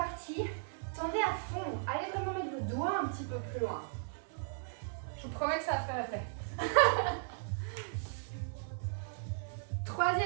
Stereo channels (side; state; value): left; silent; 53 dB below the other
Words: tendez à fond. Allez vraiment mettre vos doigts un petit peu plus loin. Je vous promets que ça va faire effet.